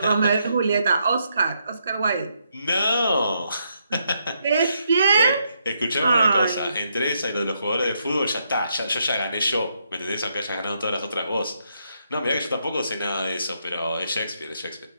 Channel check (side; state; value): both; inverted; correlation -0.77